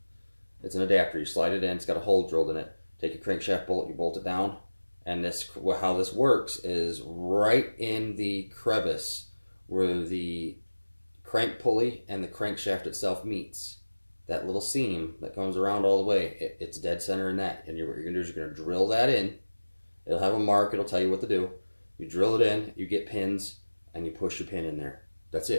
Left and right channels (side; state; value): both; inverted; correlation -1.00